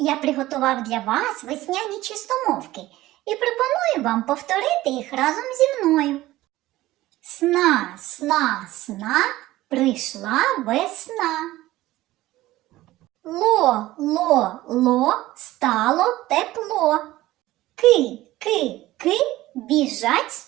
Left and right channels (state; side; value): quieter; left; 16.7 dB